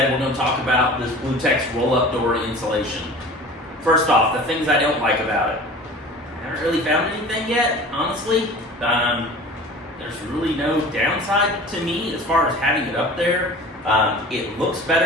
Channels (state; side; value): normal; both; correlation 0.40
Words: we're going to talk about this BlueTex roll-up door insulation. First off, the things I don't like about it. I haven't really found anything yet, honestly. There's really no downside to me as far as having it up there. It looks